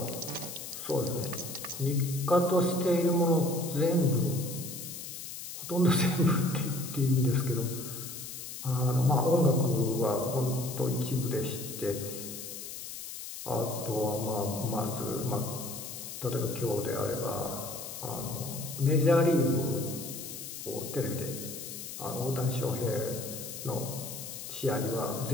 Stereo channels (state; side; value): noise; left; hiss, 9 dB below the sound